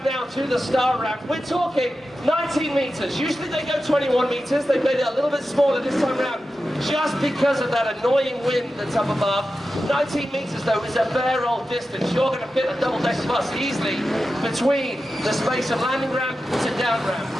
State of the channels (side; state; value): both; normal; correlation 0.92